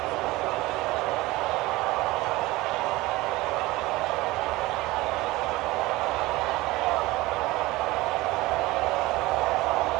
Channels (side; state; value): left; quieter; 19.9 dB